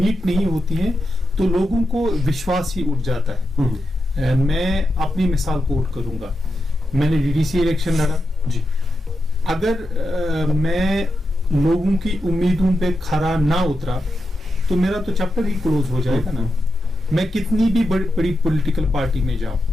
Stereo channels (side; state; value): both; normal; correlation 0.87